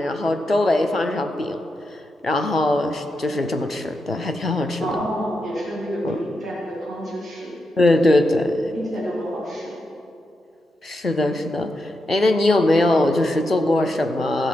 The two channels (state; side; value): normal; both; correlation 0.86